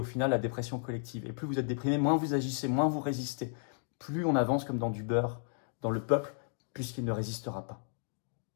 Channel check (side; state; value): right; silent; digital silence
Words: final la dépression collective. Et plus vous êtes déprimé, moins vous agissez, moins vous résistez. Plus on avance comme dans du beurre dans le peuple, puisqu'il ne résistera pas.